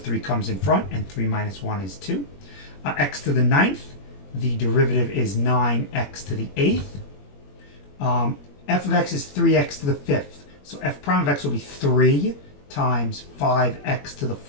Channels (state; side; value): late; right; 21 ms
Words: comes in front, and 3 minus 1 is 2. X to the ninth, the derivative is 9x to the eighth. F of x is 3x to the fifth. So f prime of x will be 3 times 5x to the